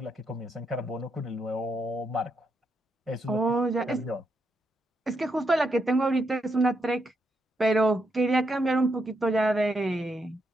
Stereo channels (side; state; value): both; normal; correlation 0.81